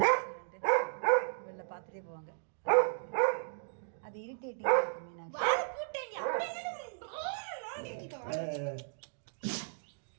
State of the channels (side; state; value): left; silent; digital silence